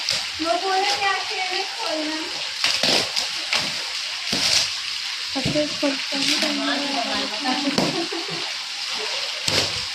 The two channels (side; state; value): both; identical; correlation 1.00